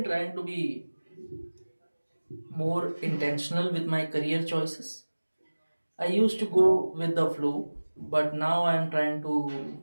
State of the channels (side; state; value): both; inverted; correlation -1.00